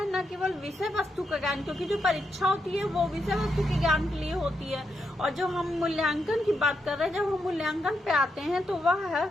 न केवल विषय वस्तु का ज्ञान, क्योंकि जो परीक्षा होती है वो विषय वस्तु के ज्ञान के लिए होती है, और जो हम मूल्यांकन की बात कर रहे हैं, जब हम मूल्यांकन पे आते हैं तो वह है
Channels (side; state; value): both; normal; correlation 0.82